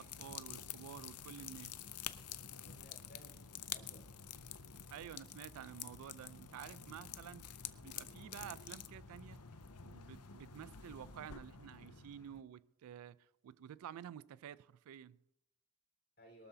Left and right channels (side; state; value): both; normal; correlation 0.09